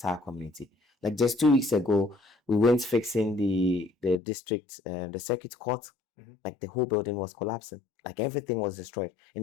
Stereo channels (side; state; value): right; drops out; at 4.2 s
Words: community. Like just 2 weeks ago, we went fixing the district, the circuit court. Like the whole building was collapsing. Like everything was destroyed.